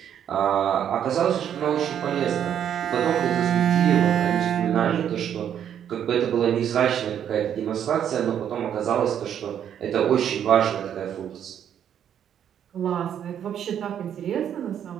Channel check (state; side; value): quieter; left; 9.4 dB